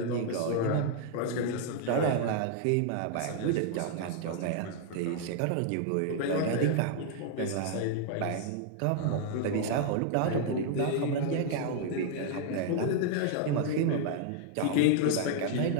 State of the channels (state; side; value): different; both; correlation 0.00